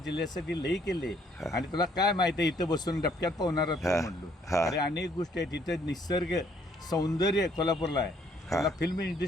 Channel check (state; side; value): normal; both; correlation 0.65